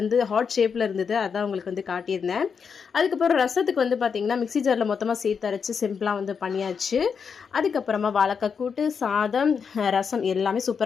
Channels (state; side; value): quieter; right; 6.2 dB